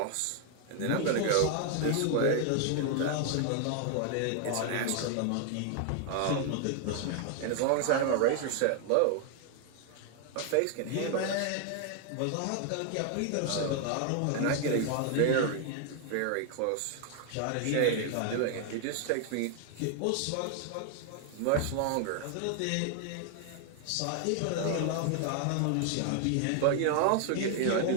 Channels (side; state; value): both; different; correlation 0.00